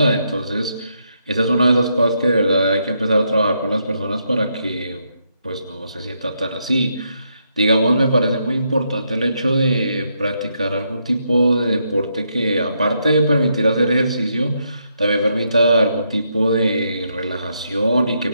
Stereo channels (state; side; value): inverted; both; correlation -0.78